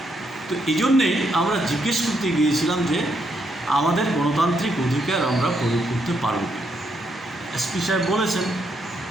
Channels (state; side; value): normal; both; correlation 0.77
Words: তো এই জন্যেই আমরা জিজ্ঞেস করতে গিয়েছিলাম যে আমাদের গণতান্ত্রিক অধিকার আমরা প্রয়োগ করতে পারব এসপি সাহেব বলেছেন